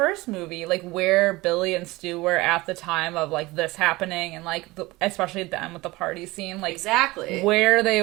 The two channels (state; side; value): quieter; left; 20.9 dB